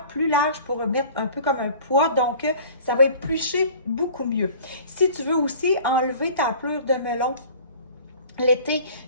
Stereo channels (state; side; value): inverted; both; correlation -0.46